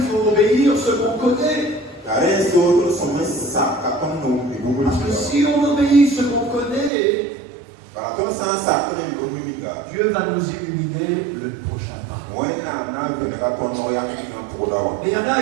faut obéir ce qu'on connaît. Parce que si on obéit ce qu'on connaît, Dieu va nous illuminer le prochain pas. Mais il y en a,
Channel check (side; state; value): left; drops out; at 6.9 s